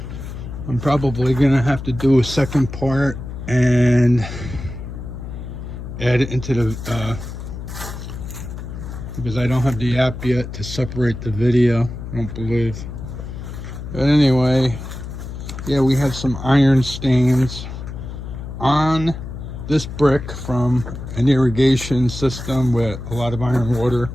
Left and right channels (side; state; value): left; noise; hum, 9 dB below the sound